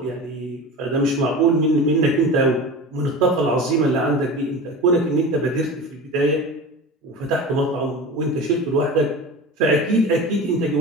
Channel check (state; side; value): normal; both; correlation 0.32